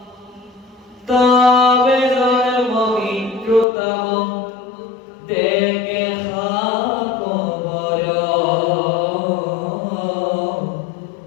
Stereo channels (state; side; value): drops out; right; at 3.7 s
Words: তবে জন্ম মৃত্যুতম দেখে খবর,